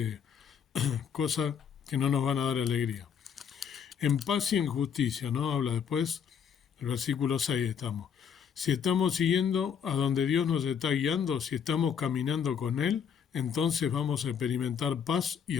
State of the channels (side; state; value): right; quieter; 7.6 dB